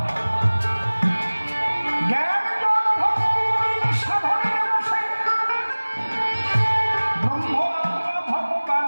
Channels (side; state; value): both; inverted; correlation -1.00